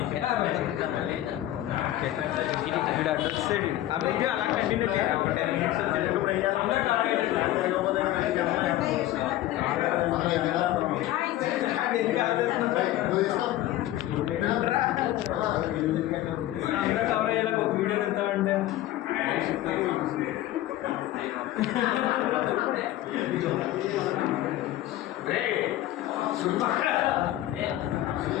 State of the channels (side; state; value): right; quieter; 14.5 dB